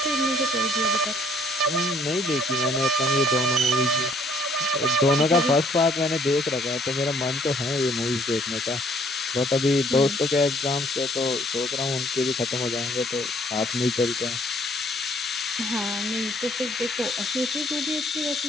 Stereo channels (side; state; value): both; normal; correlation 0.62